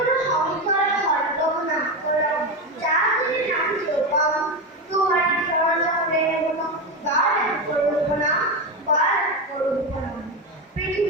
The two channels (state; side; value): normal; both; correlation 0.15